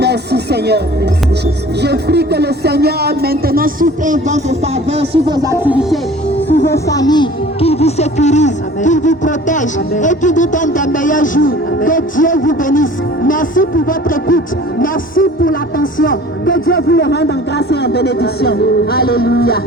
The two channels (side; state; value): both; normal; correlation 0.46